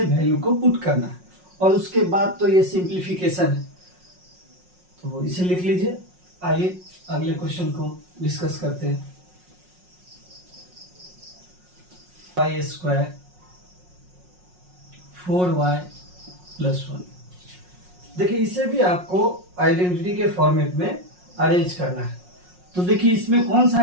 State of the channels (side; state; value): left; late; 5.5 ms